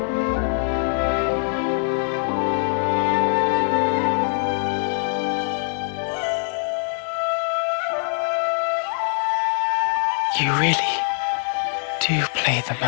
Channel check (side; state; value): right; silent; digital silence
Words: You really do play the